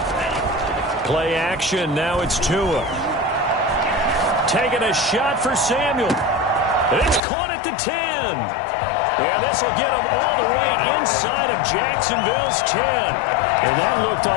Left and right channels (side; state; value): right; drops out; at 7.2 s